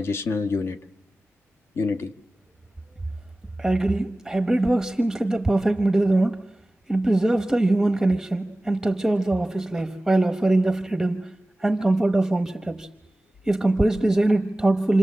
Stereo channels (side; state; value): both; normal; correlation 0.97